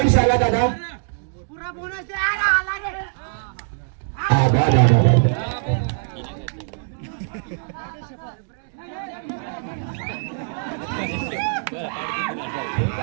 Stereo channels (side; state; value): left; silent; digital silence